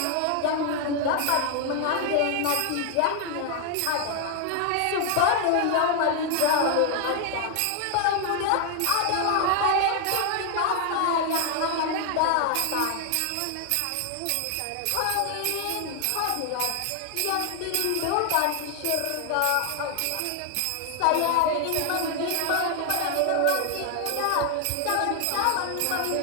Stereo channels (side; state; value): both; different; correlation 0.00